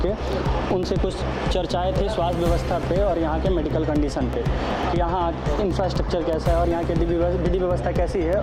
उनसे कुछ चर्चाएं थी स्वास्थ्य व्यवस्था पे और यहाँ के मेडिकल कंडीशन पे कि यहाँ इंफ्रास्ट्रक्चर कैसा है और यहाँ की विधि व्यवस्था कैसी है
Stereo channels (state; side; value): identical; both; correlation 1.00